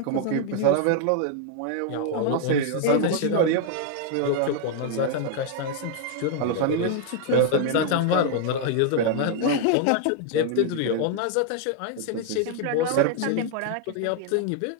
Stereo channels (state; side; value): different; both; correlation 0.00